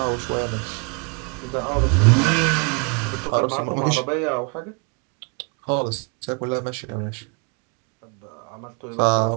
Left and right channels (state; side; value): quieter; left; 34.8 dB